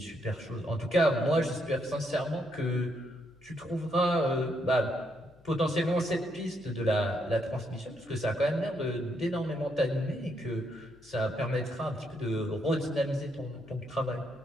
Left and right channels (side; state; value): left; noise; hum, 28 dB below the sound